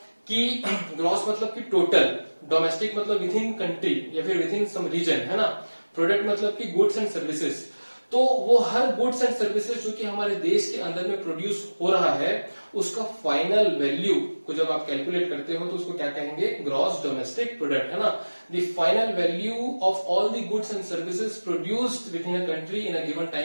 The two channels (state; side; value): inverted; both; correlation -1.00